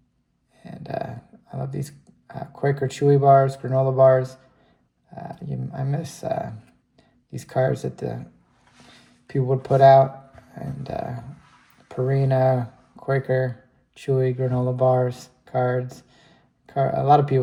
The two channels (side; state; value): both; identical; correlation 1.00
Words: And I love these Quaker Chewy bars, granola bars. I miss these cards that the people would put out. And Purina, Quaker, Chewy, granola bars, cards. A